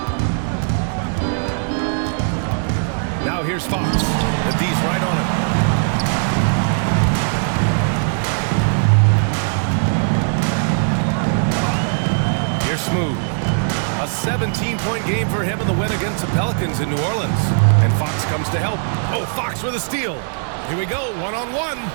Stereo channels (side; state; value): left; silent; digital silence